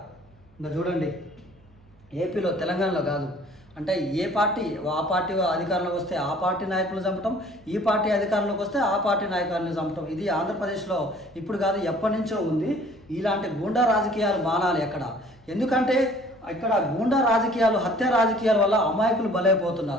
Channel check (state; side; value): normal; both; correlation 0.53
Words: ఇంకా చూడండి, ఏపీలో, తెలంగాణలో కాదు, అంటే ఏ పార్టీ ఆ పార్టీ అధికారంలోకి వస్తే ఆ పార్టీ నాయకులు చంపటం, ఈ పార్టీ అధికారంలోకి వస్తే ఆ పార్టీ నాయకులను చంపటం. ఇది ఆంధ్రప్రదేశ్లో ఇప్పుడు కాదు, ఎప్పటి నుంచో ఉంది. ఇలాంటి గూండా రాజకీయాలు మానాలి అక్కడ. ఎందుకంటే ఇక్కడ గూండా రాజకీయాలు, హత్య రాజకీయాల వల్ల అమాయకులు